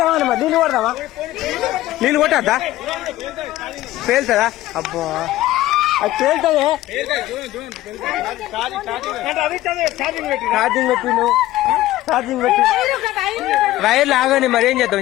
అన్నమా నీళ్ళు కొడదామా నీళ్ళు కొట్టద్దా పేలుతుందా అబ్బా అది పేలుతుంది ఛార్జింగ్ పెట్టిను ఛార్జింగ్ పెట్టి వైర్లు ఆగని మరి ఏం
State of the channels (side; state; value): right; quieter; 15.6 dB